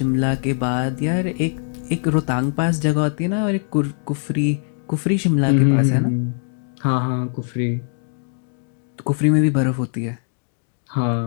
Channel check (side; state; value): right; silent; digital silence